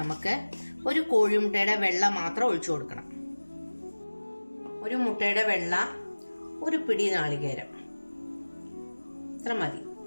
ഒരു കോഴിമുട്ടയുടെ വെള്ള മാത്രം ഒഴിച്ചു കൊടുക്കണം. ഒരു മുട്ടയുടെ വെള്ള, ഒരു പിടി നാളികേരം, ഇത്ര മതി.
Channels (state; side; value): inverted; both; correlation -1.00